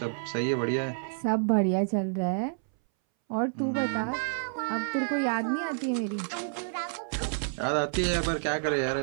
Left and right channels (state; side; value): silent; left; 59 dB below the other